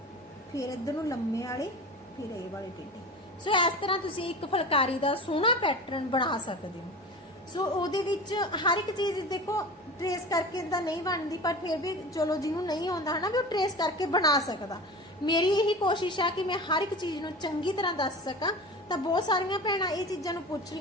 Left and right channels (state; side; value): normal; both; correlation 0.33